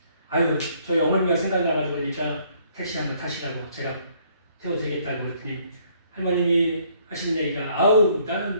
아유 저희 어머니가 생각나가지고 그러니까 택시 한번 타시라고 제가 태워드리겠다고 그랬더니 할머님이 하시는 얘기가 아우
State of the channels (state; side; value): inverted; both; correlation -0.64